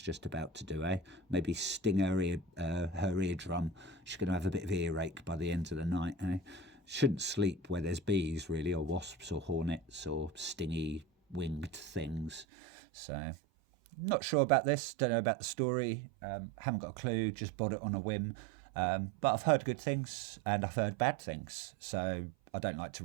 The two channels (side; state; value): left; drops out; at 12.5 s